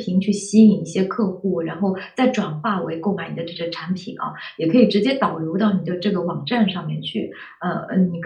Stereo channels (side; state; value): both; identical; correlation 1.00